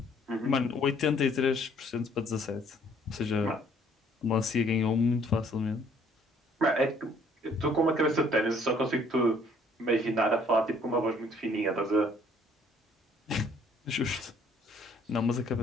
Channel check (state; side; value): normal; both; correlation 0.61